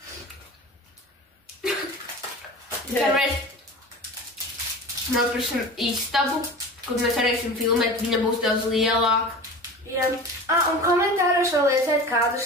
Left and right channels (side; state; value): both; normal; correlation 0.34